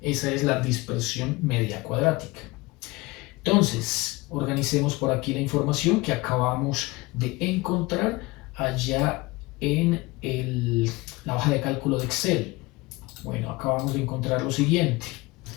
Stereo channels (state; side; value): quieter; right; 22.7 dB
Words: Esa es la dispersión media cuadrática. Entonces, organicemos por aquí la información que acabamos de encontrar allá en la hoja de cálculo de Excel. Bueno, acabamos de encontrar lo siguiente.